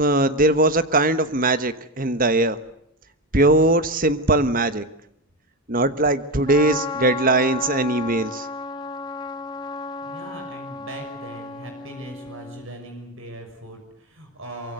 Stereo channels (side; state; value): both; normal; correlation 0.15